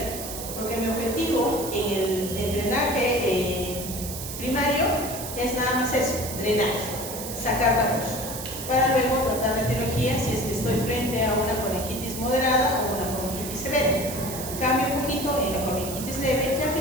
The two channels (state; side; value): noise; right; hiss, 8 dB below the sound